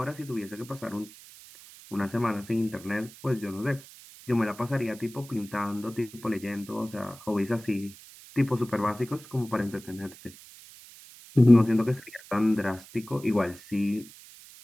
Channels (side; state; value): right; noise; hiss, 19 dB below the sound